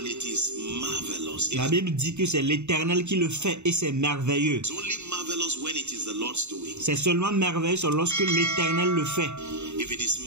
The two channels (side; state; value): left; late; 0.82 ms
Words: it is marvelous. La Bible dit que c'est l'Éternel qui le fait et c'est merveilleux. It's only marvelous when it is the Lord's doing. C'est seulement merveilleux lorsque l'Éternel le fait. If it is